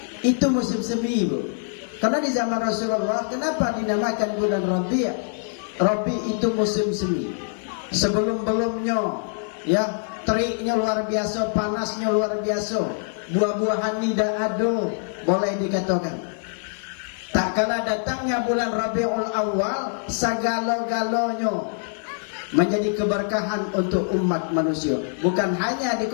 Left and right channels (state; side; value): silent; right; digital silence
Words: Itu musim semi Bu. Karena di zaman Rasulullah, kenapa dinamakan bulan Rabi'? Rabi' itu musim semi. Sebelum-belumnya ya, teriknya luar biasa, panasnya luar biasa. Buah-buahan tidak ada, boleh dikatakan. Tak kala datangnya bulan Rabiul Awal, segala-galanya menjadi keberkahan untuk umat manusia. Bukan hanya di